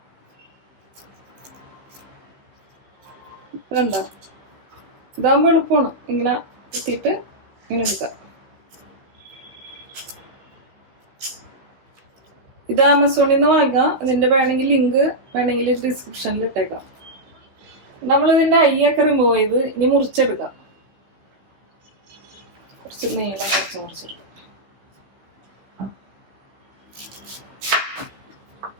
കണ്ടോ, ഇതാകുമ്പോൾ എളുപ്പമാണ്. ഇങ്ങനെ എത്തിയിട്ട് ഇങ്ങനെ എടുക്കാം. ഇത് ആമസോണിൽ നിന്ന് വാങ്ങാം. ഇതിന്റെ വേണമെങ്കിൽ ലിങ്ക് വേണമെങ്കിൽ ഡിസ്ക്രിപ്ഷനിൽ ഇട്ടേക്കാം. നമ്മളിതിന്റെ ഐയൊക്കെ റിമൂവ് ചെയ്ത് ഇനി മുറിച്ചെടുക്കാം. കുറച്ച് നീളം മുറിച്ചെടുക്കാം.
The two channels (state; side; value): late; left; 15 ms